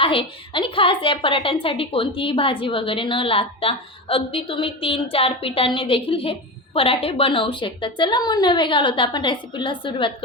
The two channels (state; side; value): normal; both; correlation 0.22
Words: आणि खास या पराठ्यांसाठी कोणतीही भाजी वगैरे न लागता अगदी तुम्ही 3-4 पिठांनी देखील हे पराठे बनवू शकता। चला मग न वेळ घालवता आपण रेसिपीला सुरुवात